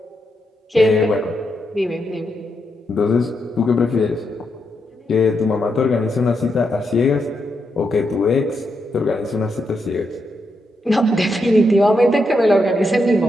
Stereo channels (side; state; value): both; normal; correlation 0.82